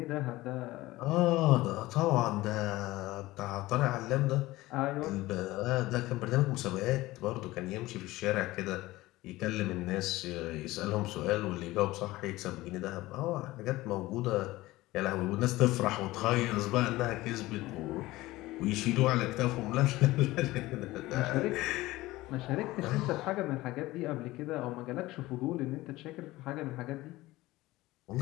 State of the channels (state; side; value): quieter; right; 18.4 dB